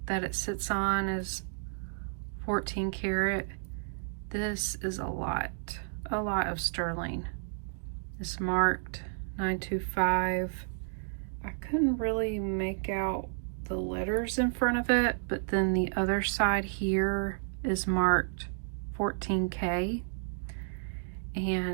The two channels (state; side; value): silent; left; digital silence